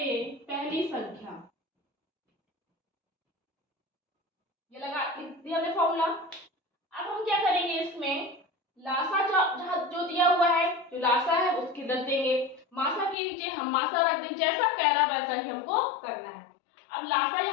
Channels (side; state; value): right; drops out; at 13.2 s